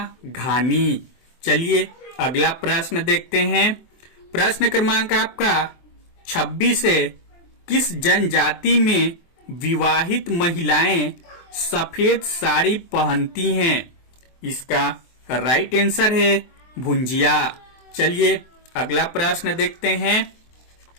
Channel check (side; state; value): right; late; 23 ms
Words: घानी। चलिए अगला प्रश्न देखते हैं। प्रश्न क्रमांक आपका 26 है, किस जनजाति में विवाहित महिलाएं सफेद साड़ी पहनती हैं? इसका राइट आंसर है भुंजिया। चलिए अगला प्रश्न देखते हैं।